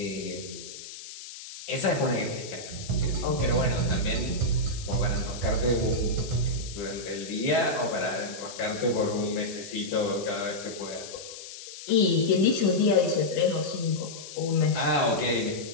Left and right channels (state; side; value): noise; left; hiss, 13 dB below the sound